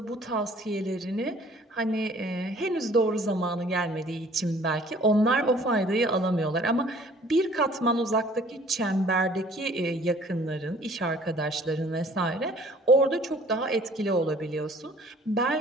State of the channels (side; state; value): both; normal; correlation 0.54